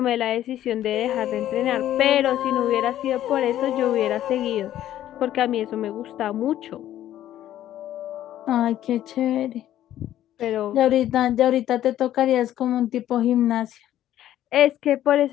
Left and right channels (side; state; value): right; quieter; 12.4 dB